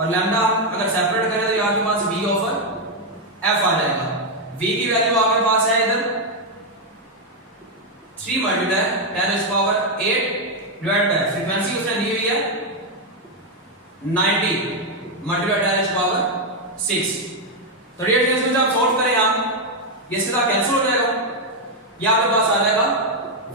लैम्डा अगर सेपरेट करें तो आपके पास v/f आ जाएगा। v की वैल्यू आपके पास है इधर 3 × 10⁸ डिवाइड बाय फ्रीक्वेंसी उसने दी हुई है 90 × 10⁻⁶। तो डियर स्टूडेंट्स आप सॉल्व करें हम, ये सीधा कैंसिल हो जाएगा, ये आपके पास आ जाएगा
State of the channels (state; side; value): normal; both; correlation 0.02